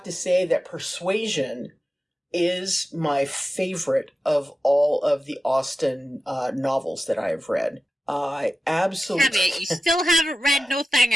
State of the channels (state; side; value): normal; both; correlation 0.94